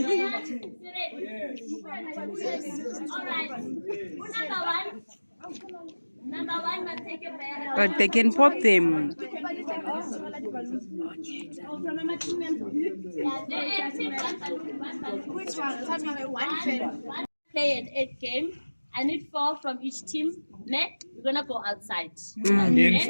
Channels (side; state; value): both; inverted; correlation -1.00